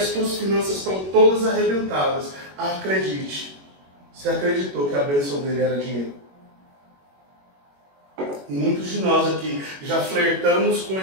tuas finanças estão todas arrebentadas, acredite, você acreditou que a bênção dele era dinheiro. E muitos de nós aqui já flertamos com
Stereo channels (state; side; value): late; left; 21 ms